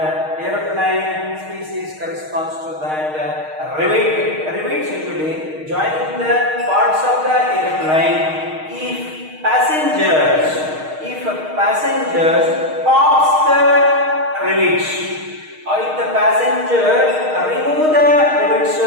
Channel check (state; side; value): late; left; 6.4 ms